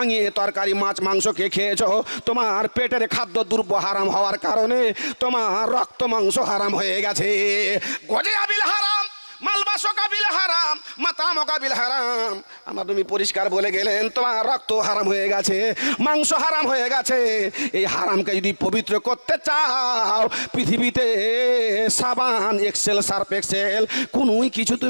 ভাঙিয়ে তরকারি মাছ মাংস খেয়েছো, তোমার পেটের খাদ্য দ্রব্য হারাম হওয়ার কারণে তোমার রক্ত মাংস হারাম হয়ে গেছে। গজে আবিল হারাম, মালবাসো কাবিল হারাম, মাতামো কাবিল হারাম। আমার তুমি পরিষ্কার বলে গেলেন তোমার রক্ত হারাম হয়ে গেছে, মাংস হারাম হয়ে গেছে। এই হারামকে যদি পবিত্র করতে চাও, পৃথিবীতে সাবান এক্সেল সার্ফ এক্সেল কোনোই কিছু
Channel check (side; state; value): both; inverted; correlation -1.00